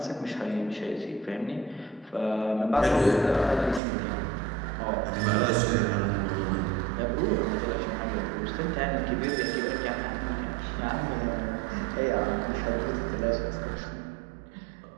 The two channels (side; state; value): left; drops out; at 3.8 s